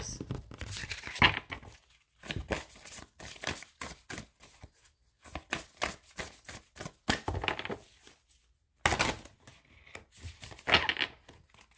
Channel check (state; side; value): identical; both; correlation 1.00